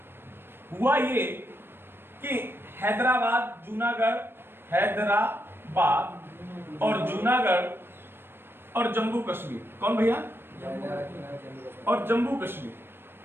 हुआ ये कि हैदराबाद, जूनागढ़, हैदराबाद और जूनागढ़ और जम्मू कश्मीर, कौन भैया? और जम्मू कश्मीर,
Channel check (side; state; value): left; late; 0.10 ms